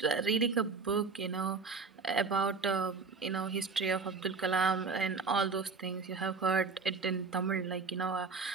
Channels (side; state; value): left; quieter; 4.7 dB